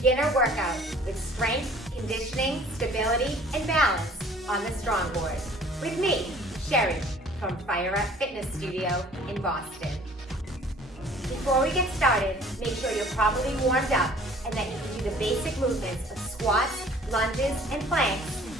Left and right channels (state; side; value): normal; both; correlation 0.52